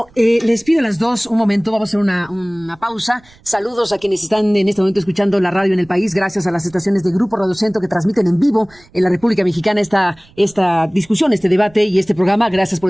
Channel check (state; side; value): noise; right; rumble, 29 dB below the sound